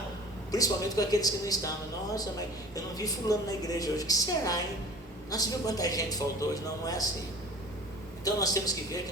principalmente com aqueles que não estavam: nossa, mas eu não vi fulano na igreja hoje, o que será, hein? Nossa, viu quanta gente faltou hoje? Não, não é assim. Então nós temos que ver que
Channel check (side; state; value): both; normal; correlation 0.43